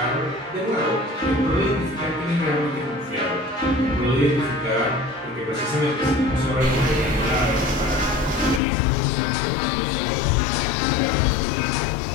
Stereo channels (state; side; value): drops out; right; at 8.6 s